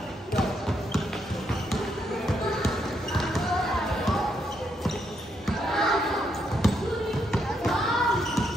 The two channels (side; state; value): both; normal; correlation 0.77